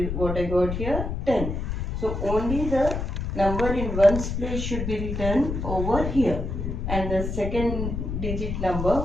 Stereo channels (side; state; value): left; noise; rumble, 3 dB below the sound